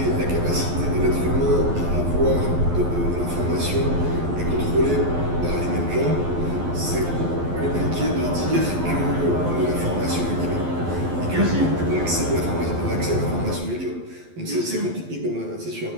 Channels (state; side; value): late; left; 12 ms